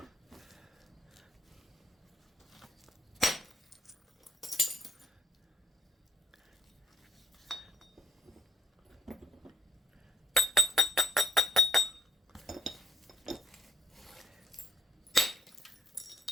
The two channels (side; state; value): both; normal; correlation 0.70